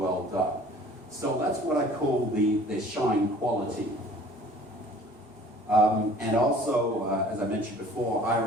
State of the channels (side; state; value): both; normal; correlation 0.50